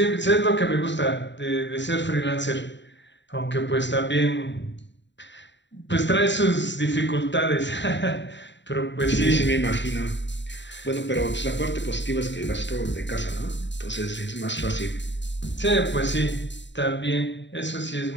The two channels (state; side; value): late; right; 0.52 ms